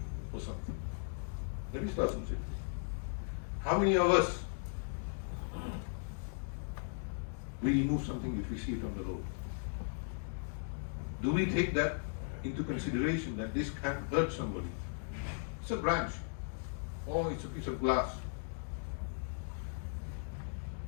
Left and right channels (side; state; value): right; silent; digital silence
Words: or something. Nabi Sallallahu Alaihi Wasallam said. How many of us we remove something if we see it on the road? Do we take that into consideration that this can hurt somebody? It's a branch, or it's a piece of glass.